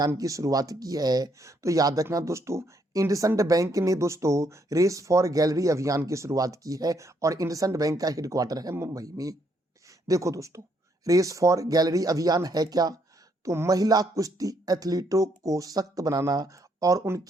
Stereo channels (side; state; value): both; normal; correlation 0.73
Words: की शुरुआत की है? तो याद रखना दोस्तों, इंडसइंड बैंक ने दोस्तों रेस फॉर गैलरी अभियान की शुरुआत की है और इंडसइंड बैंक का हेडक्वार्टर है मुंबई में। देखो दोस्तों, रेस फॉर गैलरी अभियान है क्या? तो महिला कुश्ती एथलीटों को सशक्त बनाना और